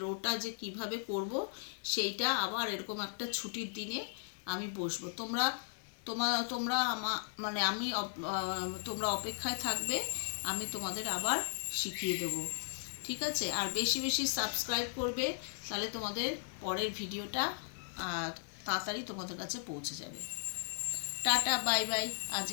রোটা যে কিভাবে করব সেইটা আবার এরকম একটা ছুটির দিনে আমি বসবো। তোমরা তোমরা মানে তোমরা অপেক্ষায় থাকবে, আমি তোমাদের আবার শিখিয়ে দেবো। ঠিক আছে? আর বেশি বেশি সাবস্ক্রাইব করবে, তাহলে তোমাদের পরের ভিডিওটা তাড়াতাড়ি তোমাদের কাছে পৌঁছে যাবে। টাটা বাই বাই, আজ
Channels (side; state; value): right; silent; digital silence